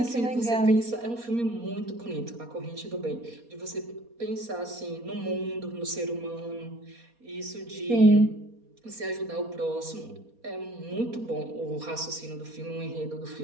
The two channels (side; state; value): left; late; 4.2 ms